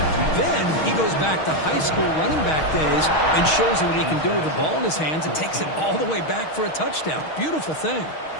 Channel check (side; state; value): right; late; 6.4 ms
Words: Then he goes back to high school running back days and shows you what he can do with the ball in his hands and takes it all the way back for a touchdown. Beautiful thing.